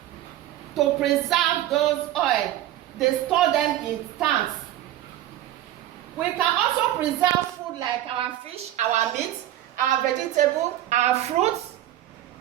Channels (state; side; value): quieter; left; 13.4 dB